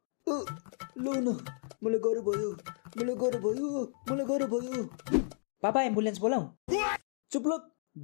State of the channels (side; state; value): right; silent; digital silence